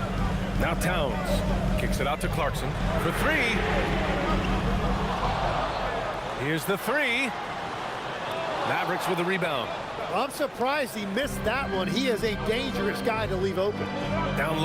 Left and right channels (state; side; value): identical; both; correlation 1.00